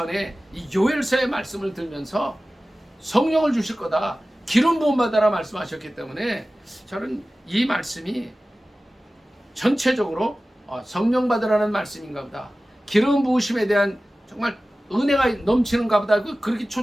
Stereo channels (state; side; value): normal; both; correlation 0.96